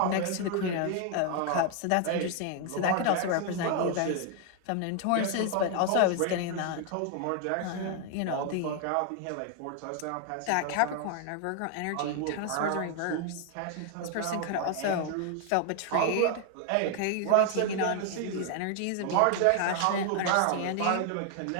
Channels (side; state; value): both; different; correlation 0.00